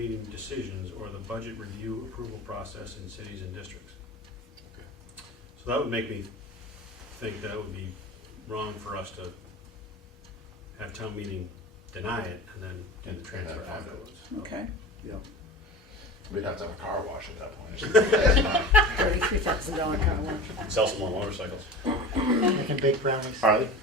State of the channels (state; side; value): normal; both; correlation 0.33